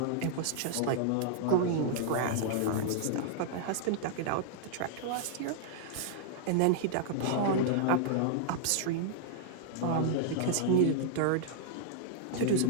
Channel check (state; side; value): different; both; correlation -0.01